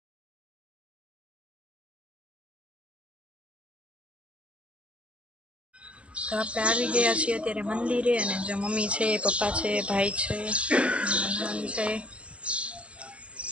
તો આપણે આવી ગયા છીએ અત્યારે મંદિરે. અને જો મમ્મી છે, પપ્પા છે, ભાઈ છે, નણંદ છે.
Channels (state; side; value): late; left; 0.060 ms